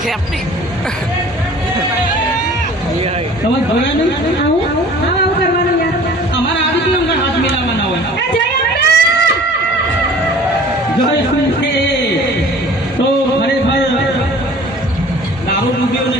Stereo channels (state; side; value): normal; both; correlation 0.47